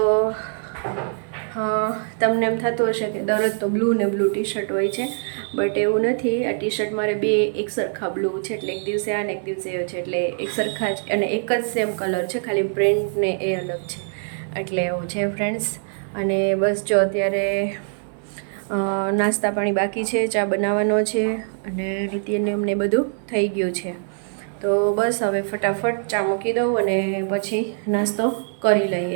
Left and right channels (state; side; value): silent; left; digital silence